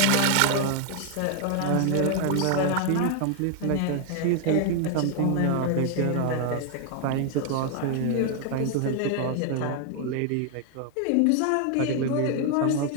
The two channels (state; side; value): different; both; correlation 0.00